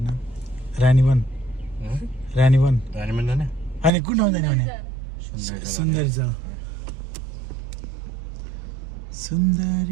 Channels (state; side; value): drops out; left; at 3.9 s